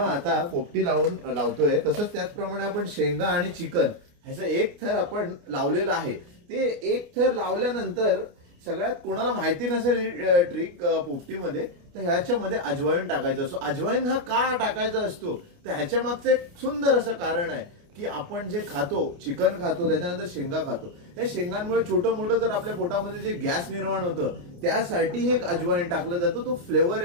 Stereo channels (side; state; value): left; late; 29 ms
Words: पोपटी लावतोय तसंच त्याचप्रमाणे आपण शेंगा आणि चिकन ह्याचा एक थर आपण लावलेला आहे. ते एक थर लावल्यानंतर सगळ्यात कोणाला माहिती नसेल ट्रिक पोपटीमध्ये तर ह्याच्यामध्ये अजवाईन टाकायचं असतो. अजवाईन हा का टाकायचा असतो तर ह्याच्या मागचं एक सुंदर असं कारण आहे की आपण जे खातो चिकन खातो त्याच्यानंतर शेंगा खातो, त्या शेंगांमुळे छोटं मोठं जर आपल्या पोटामध्ये जे गॅस निर्माण होतं त्यासाठी हे अजवाईन टाकलं जातं. तो फ्लेवर